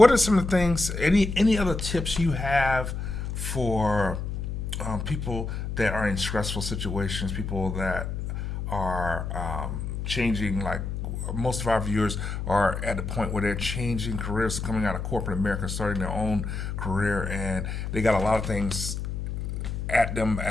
are some of the things, any other tips you have for people that are in stressful situations, people that are changing, like most of our viewers are at the point where they're changing careers, coming out of corporate America, starting their own career, and they got a lot of things at them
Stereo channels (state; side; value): noise; left; hum, 4 dB below the sound